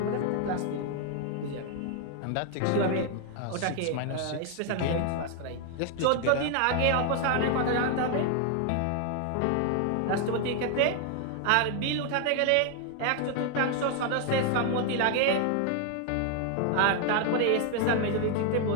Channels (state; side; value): different; both; correlation 0.00